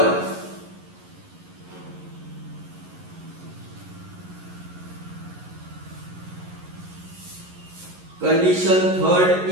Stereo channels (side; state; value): left; late; 11 ms